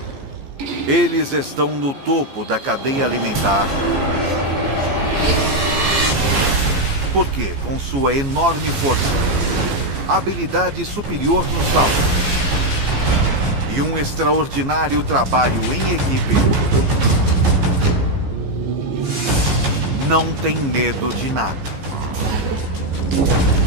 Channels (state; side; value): late; left; 15 ms